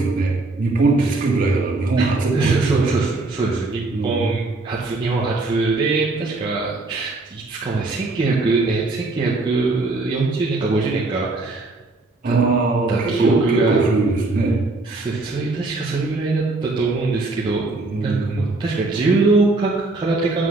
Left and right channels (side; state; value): left; quieter; 3.2 dB